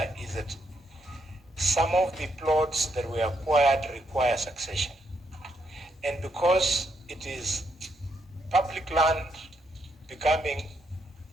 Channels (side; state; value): both; normal; correlation 0.77